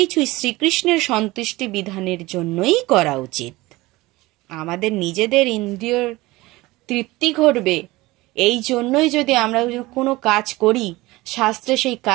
শ্রীকৃষ্ণের সন্তুষ্টি বিধানের জন্যই করা উচিত। আমাদের নিজেদের ইন্দ্রিয়র তৃপ্তি ঘটবে এই জন্যই যদি আমরা কোনো কাজ করি, শাস্ত্রে সেই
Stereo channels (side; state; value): left; quieter; 20.1 dB